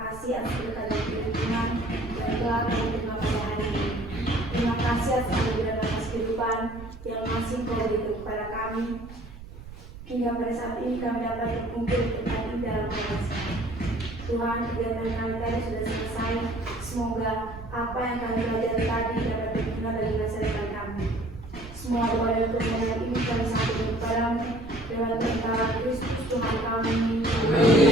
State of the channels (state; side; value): noise; right; rumble, 15 dB below the sound